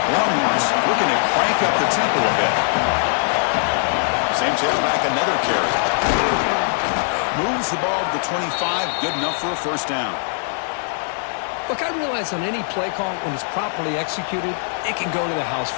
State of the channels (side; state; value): right; silent; digital silence